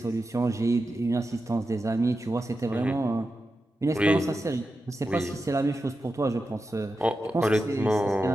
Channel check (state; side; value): normal; both; correlation 0.90